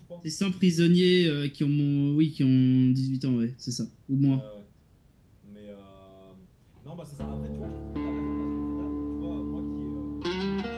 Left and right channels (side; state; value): both; identical; correlation 1.00